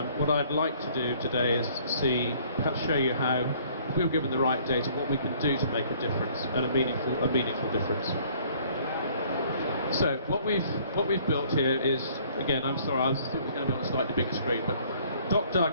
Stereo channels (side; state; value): both; inverted; correlation -0.58